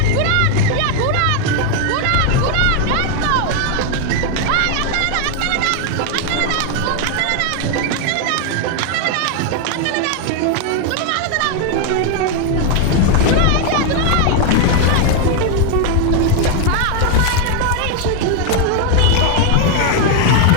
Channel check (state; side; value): different; both; correlation 0.01